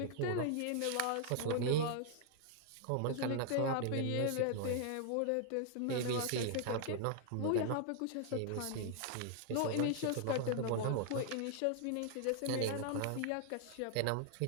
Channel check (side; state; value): both; different; correlation 0.00